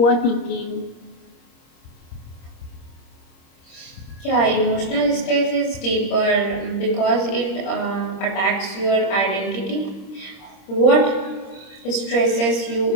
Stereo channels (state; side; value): late; right; 26 ms